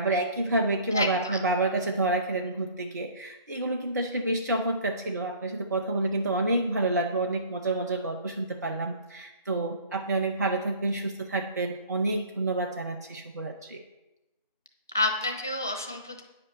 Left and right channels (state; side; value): inverted; both; correlation -0.47